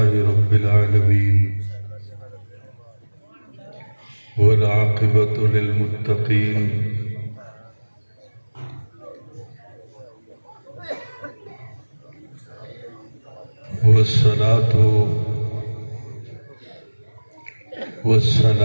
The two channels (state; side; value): inverted; both; correlation -1.00